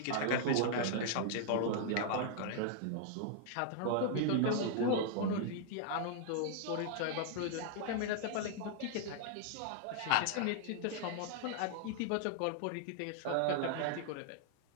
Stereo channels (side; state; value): both; different; correlation 0.00